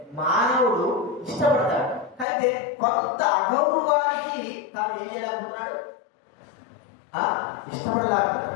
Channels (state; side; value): drops out; right; at 2.2 s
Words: మానవుడు ఇష్టపడతాడు. అయితే కొంత అగౌరవానికి తాను ఏం చేయలేకపోతున్నాడు,